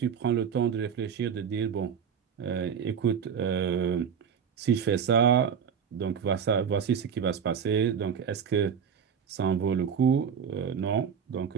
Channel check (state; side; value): quieter; left; 7.3 dB